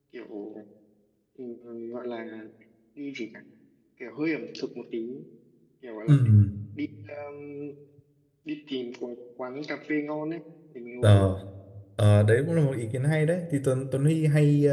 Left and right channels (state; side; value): identical; both; correlation 1.00